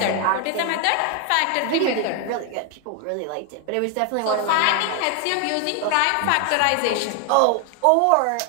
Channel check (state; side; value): different; both; correlation 0.01